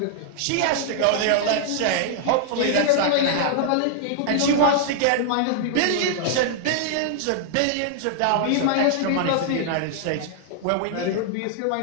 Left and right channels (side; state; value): both; different; correlation -0.01